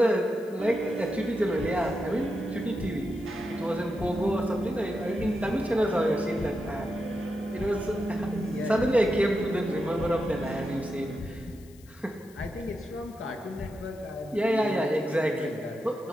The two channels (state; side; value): noise; left; hiss, 26 dB below the sound